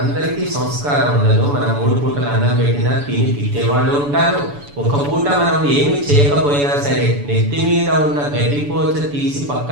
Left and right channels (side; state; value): left; late; 7.0 ms